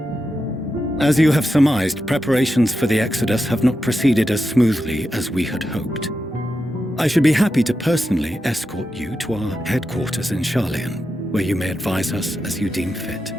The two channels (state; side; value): normal; both; correlation 0.88